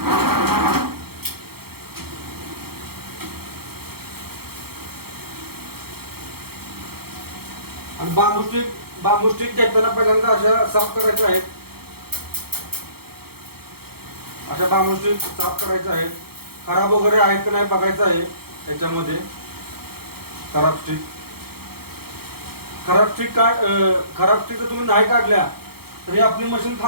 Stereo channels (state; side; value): late; left; 0.96 ms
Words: आणि बांबू स्टिक घेताना पहिल्यांदा अशा साफ करायच्या आहेत. अशा बांबू स्टिक साफ करायच्या आहेत. खराब वगैरे आहेत की नाही बघायचं आहे त्याच्यामध्ये खराब स्टिक. खराब स्टिक जर तुम्ही नाही काढल्या तरी आपली मशीन